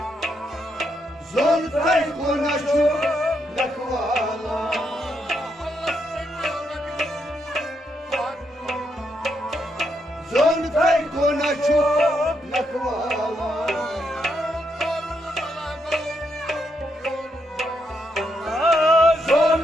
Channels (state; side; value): normal; both; correlation 0.79